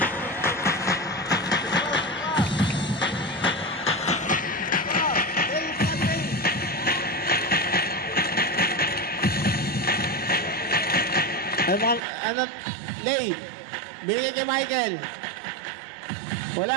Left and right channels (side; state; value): left; drops out; at 12.0 s